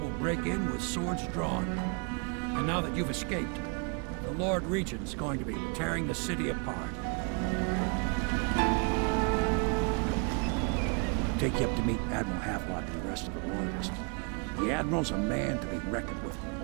break in with swords drawn. And now that you've escaped, the Lord Regent's going to be tearing the city apart. Take you up to meet Admiral Havelock and the rest of the Royalists. The Admiral's a man to be reckoned with.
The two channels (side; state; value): left; quieter; 35.5 dB